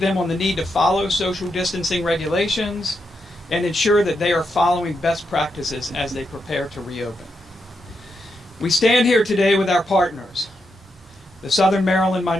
on the need to follow social distancing regulations and ensure that they are following best practices as they prepare to reopen. We stand here today with our partners, the Southern Maryland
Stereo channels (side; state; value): both; normal; correlation 0.83